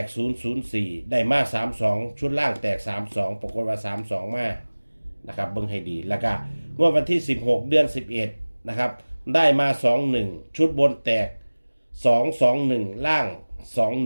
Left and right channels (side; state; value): both; inverted; correlation -1.00